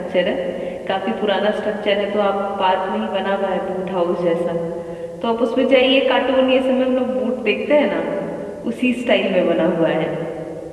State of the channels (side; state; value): both; identical; correlation 1.00